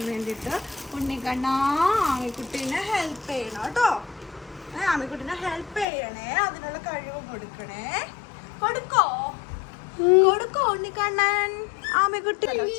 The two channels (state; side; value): drops out; right; at 5.9 s